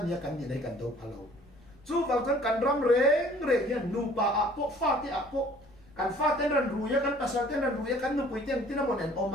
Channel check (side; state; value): left; noise; rumble, 26 dB below the sound